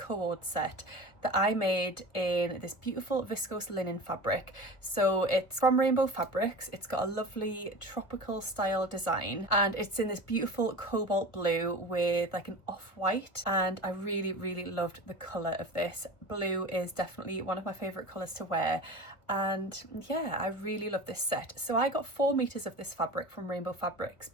set that I made in this beautiful viscose linen fabric. So it's from Rainbow Fabrics. It's got a lovely tropical style design and it's in this beautiful cobalt blue with like an off-white, and I really loved the colour of this. Blue is definitely one of my favourite colours to wear, and yeah, I really love this set. So I got 4 meters of this fabric from Rainbow Fabrics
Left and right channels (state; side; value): late; right; 1.2 ms